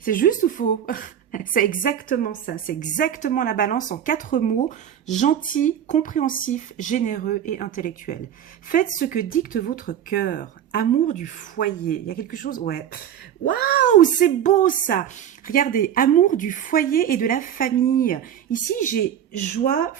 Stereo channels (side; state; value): left; quieter; 9.8 dB